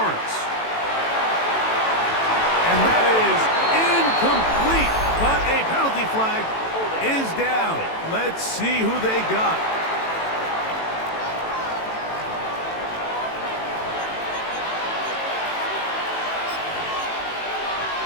And that is incomplete, but a penalty flag is down. Let's see who they got.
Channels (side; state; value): right; late; 18 ms